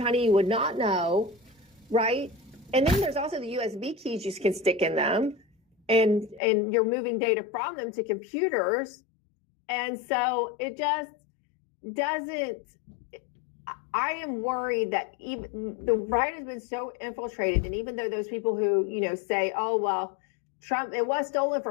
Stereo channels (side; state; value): right; drops out; at 6.4 s